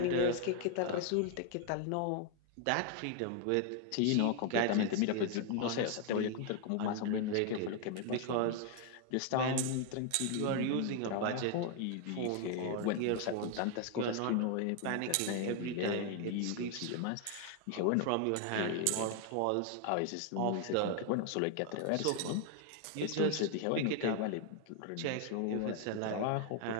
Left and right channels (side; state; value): both; different; correlation 0.00